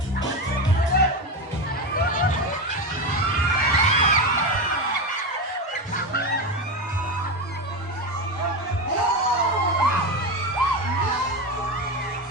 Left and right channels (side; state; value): both; normal; correlation 0.17